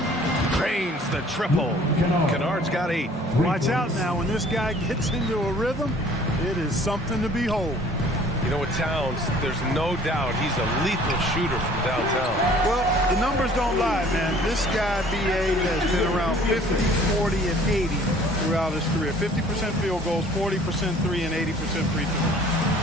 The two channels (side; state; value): both; normal; correlation 0.53